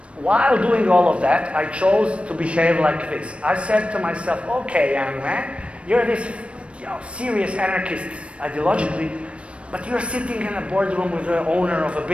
while doing all of that, I chose to behave like this. I said to myself, okay, young man, you're this, you know, serious anarchist ideologically, but you're sitting in a boardroom with the owner of a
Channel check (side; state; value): left; late; 0.061 ms